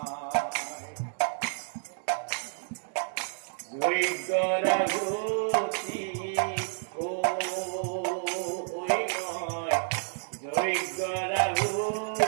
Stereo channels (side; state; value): left; silent; digital silence